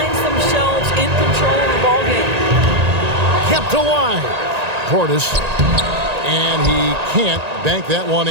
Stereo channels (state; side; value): late; left; 1.9 ms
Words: themselves in control of the ballgame. Kept alive. Portis. And he can't bank that one